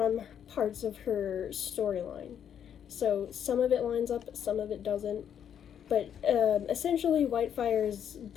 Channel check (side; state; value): right; quieter; 8.9 dB